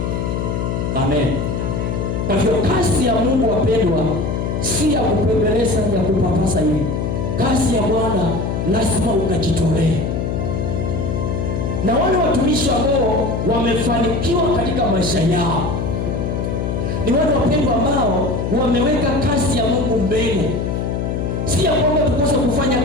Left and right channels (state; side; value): noise; left; hum, 1 dB below the sound